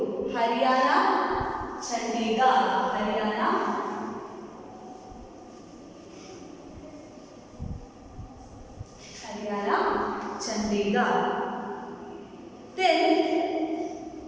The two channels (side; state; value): both; identical; correlation 1.00